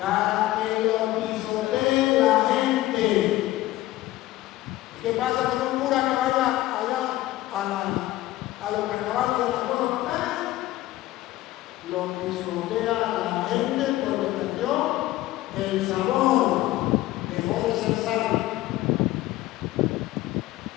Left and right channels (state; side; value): quieter; right; 16.2 dB